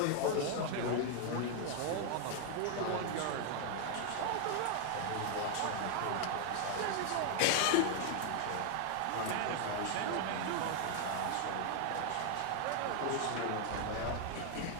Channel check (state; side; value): different; both; correlation 0.00